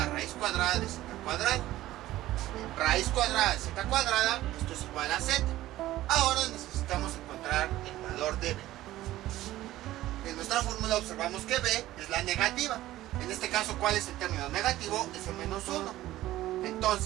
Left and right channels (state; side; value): quieter; left; 15.4 dB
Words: raíz cuadrada de z cuadrada. Raíz cuadrada de z cuadrada, esto es igual a z. Ahora necesitamos encontrar el valor de b. En nuestra fórmula observamos que b es la negativa. En este caso, ¿cuál es el término negativo? Es el menos 1.